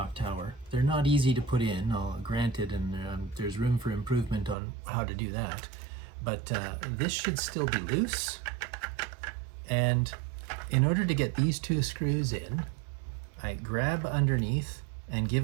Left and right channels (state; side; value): drops out; left; at 4.5 s